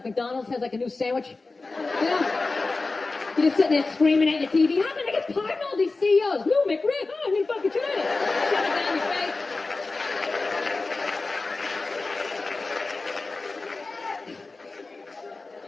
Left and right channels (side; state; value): right; quieter; 3.6 dB